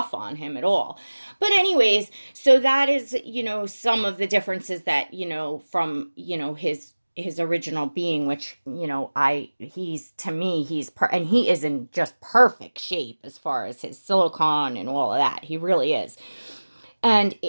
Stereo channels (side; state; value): both; inverted; correlation -1.00